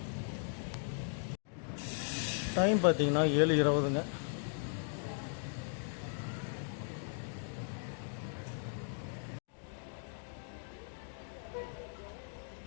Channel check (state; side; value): silent; right; digital silence